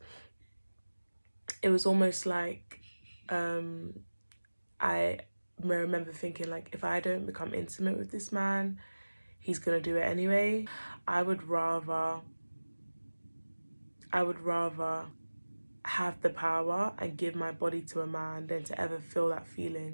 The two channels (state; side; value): inverted; both; correlation -1.00